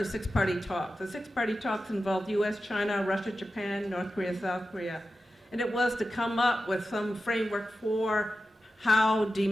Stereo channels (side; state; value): both; normal; correlation 0.92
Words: six-party talks. The six-party talks involved US, China, Russia, Japan, North Korea, South Korea. And it was to come up with some framework for how